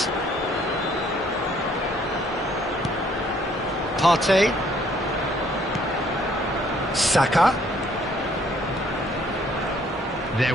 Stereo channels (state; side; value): normal; both; correlation 0.63